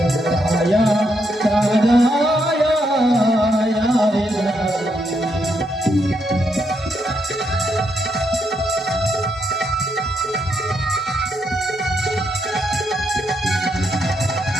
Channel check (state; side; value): normal; both; correlation 0.78